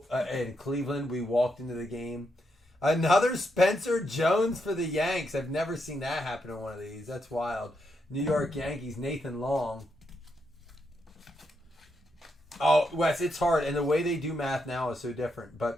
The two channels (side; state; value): both; normal; correlation 0.81